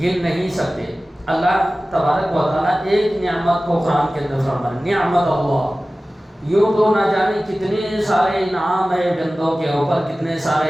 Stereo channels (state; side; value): normal; both; correlation 0.97